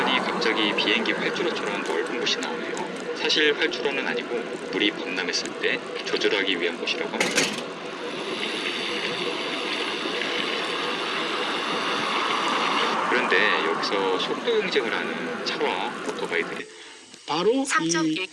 갑자기 비행기 활주로처럼 넓은 곳이 나오네요. 사실 활주로는 아니고 물이 범람했을 때 조절하기 위한 곳이라고 합니다. 그런데 여기서 속도 경쟁을 하는 차와 오토바이들이 바로 이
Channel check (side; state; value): both; identical; correlation 1.00